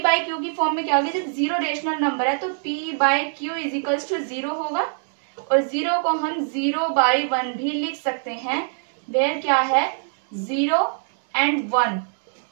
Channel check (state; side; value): silent; left; digital silence